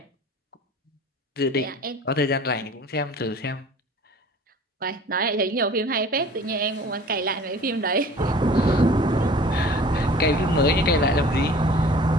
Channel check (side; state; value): both; normal; correlation 0.46